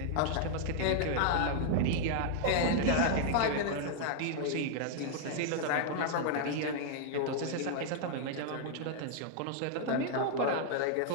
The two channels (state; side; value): different; both; correlation -0.01